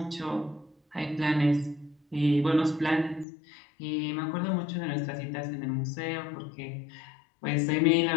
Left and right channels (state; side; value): drops out; right; at 3.2 s